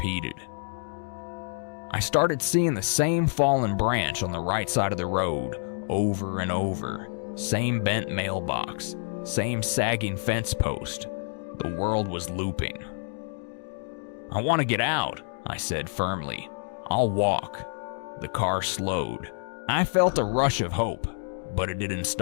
I started seeing the same fallen branch on the right side of the road, over and over. Same bent mailbox, same sagging fence post. The world was looping. I want to get out, I said firmly. I'll walk. The car slowed. I felt a rush of hope, but it didn't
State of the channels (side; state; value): right; silent; digital silence